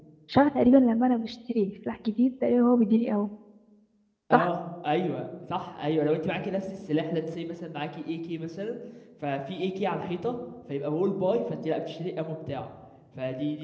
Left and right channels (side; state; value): both; identical; correlation 1.00